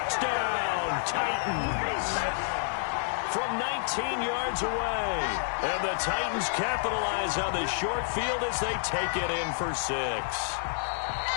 Titans. From 19 yards away. And the Titans capitalize on the short field as they take it in for 6.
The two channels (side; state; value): right; silent; digital silence